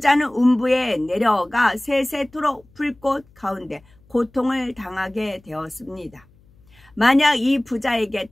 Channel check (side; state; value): left; noise; hum, 30 dB below the sound